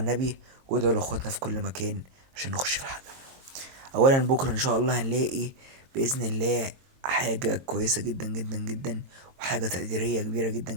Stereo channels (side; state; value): left; late; 22 ms